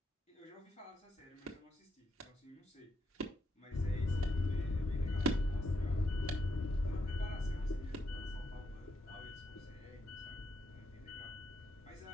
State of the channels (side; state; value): both; normal; correlation 0.80